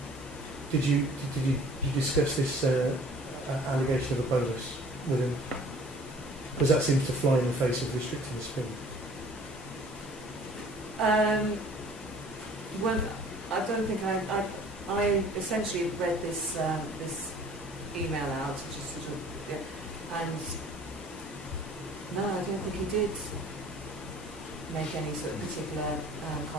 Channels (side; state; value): both; normal; correlation 0.51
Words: Did you discuss this allegation of a bolus with him? Because that seems to fly in the face of restricting the speed. Well, I don't think I essentially read this this email out, just sort of, yeah, and no, I don't think he did make any sort of particular